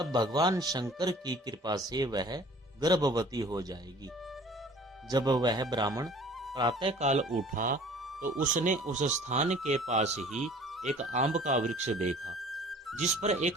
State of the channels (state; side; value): normal; both; correlation 0.49